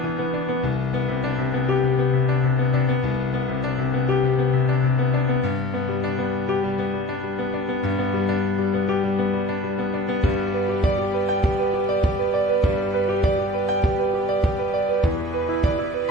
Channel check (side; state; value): both; normal; correlation 0.40